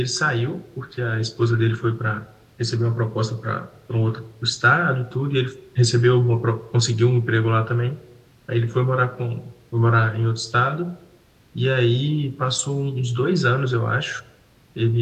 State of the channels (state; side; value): identical; both; correlation 1.00